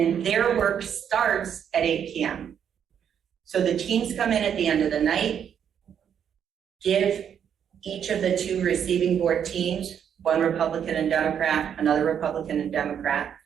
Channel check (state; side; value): quieter; left; 8.4 dB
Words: their work starts at 8 p.m. So the teams come in at the end of the night, give each of the 2 receiving board teams, 1 Republican and Democrat, another Republican and Democrat,